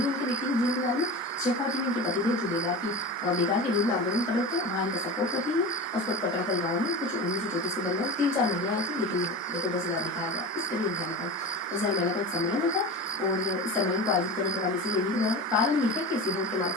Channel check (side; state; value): both; normal; correlation 0.29